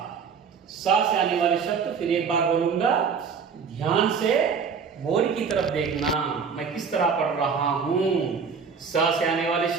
सा से आने वाले शब्द फिर एक बार बोलूंगा, ध्यान से बोर्ड की तरफ देखना, मैं किस तरह पढ़ रहा हूं। सा से आने वाले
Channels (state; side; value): quieter; left; 6.0 dB